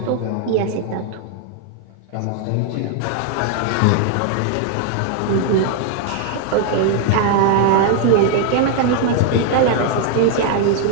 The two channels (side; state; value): both; different; correlation 0.00